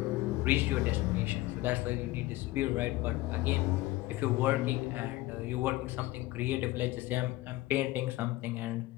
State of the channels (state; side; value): quieter; right; 18.1 dB